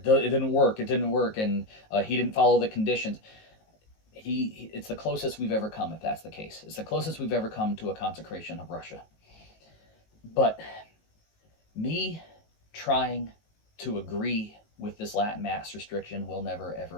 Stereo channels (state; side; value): late; right; 19 ms